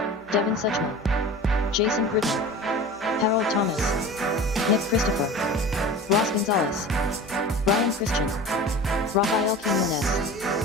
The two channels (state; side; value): normal; both; correlation 0.36